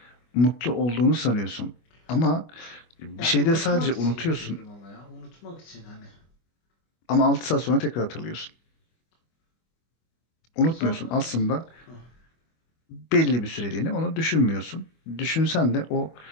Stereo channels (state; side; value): late; right; 25 ms